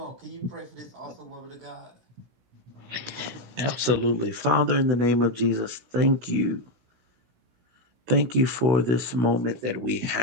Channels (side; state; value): left; late; 16 ms